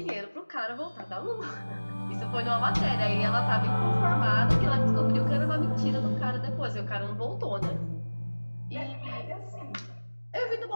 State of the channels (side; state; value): both; inverted; correlation -1.00